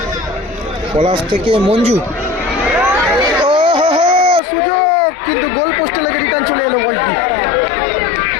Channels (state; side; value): drops out; right; at 4.4 s